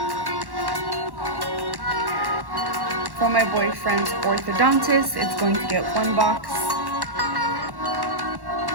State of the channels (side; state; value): left; late; 1.1 ms